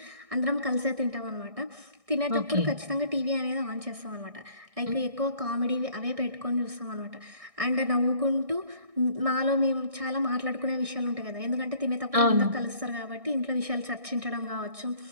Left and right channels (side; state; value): left; late; 1.6 ms